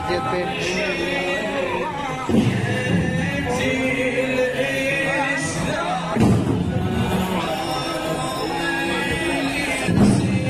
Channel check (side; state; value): both; identical; correlation 1.00